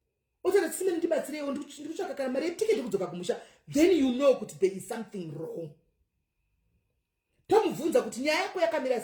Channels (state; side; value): identical; both; correlation 1.00